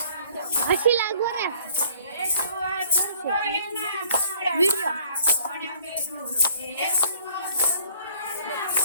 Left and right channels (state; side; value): inverted; both; correlation -0.56